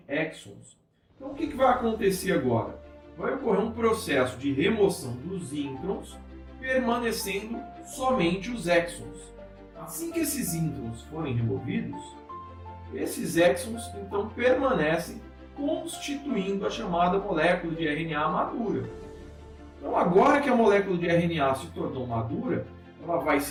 exons. Então o que vai acontecer agora? Vai ocorrer um processo de remoção dos introns, permanecendo somente os exons. Assim que esses introns forem removidos, esses exons então permanecem constituindo a chamada molécula de RNA madura. Então agora que a molécula de RNA se tornou madura, ela vai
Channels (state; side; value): identical; both; correlation 1.00